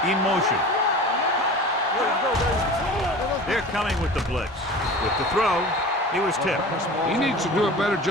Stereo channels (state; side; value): normal; both; correlation 0.37